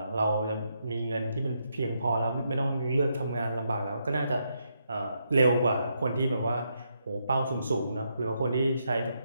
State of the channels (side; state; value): both; inverted; correlation -0.79